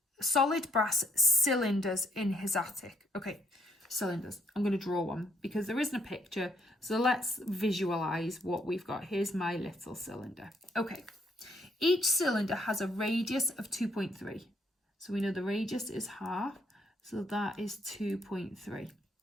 solid brass cylinders in his attic. Okay, cylinders. I'm going to draw one because there isn't a picture. So let's visualize what we've got. Here's my little cylinder. Okay. Each cylinder has a radius of 2.3. So we know the radius is half. So that is 2.3.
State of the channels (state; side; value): normal; both; correlation 0.70